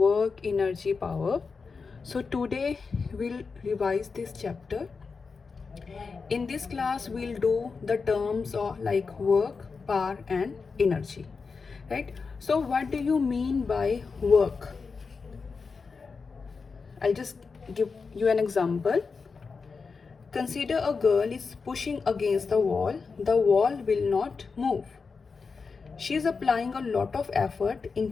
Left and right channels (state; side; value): quieter; right; 4.9 dB